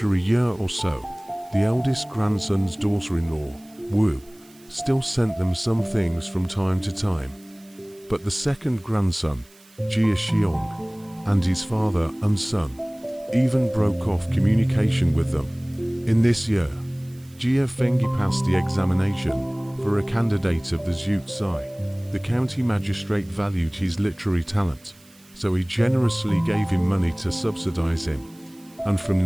a year or so, the eldest grandson's daughter-in-law, Wu, still sent them some things from time to time. But the second grandson, Jia Xiong, and his father and son even broke off communication with them. In this year, Jia Fengyi passed the examination for a candidate of the Zhu Zai. The county magistrate valued his literary talent, so he generously gave him money to subsidize him. And from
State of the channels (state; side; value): noise; right; hiss, 27 dB below the sound